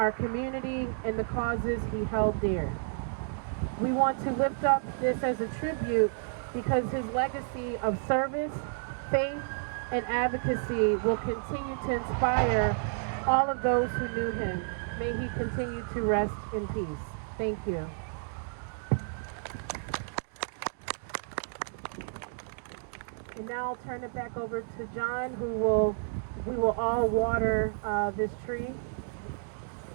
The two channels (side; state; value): left; silent; digital silence